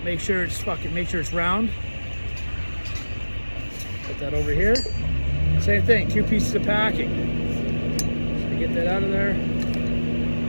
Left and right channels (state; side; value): inverted; both; correlation -1.00